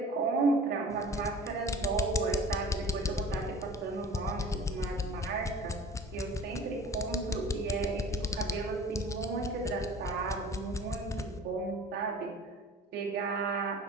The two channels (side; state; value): both; normal; correlation 0.44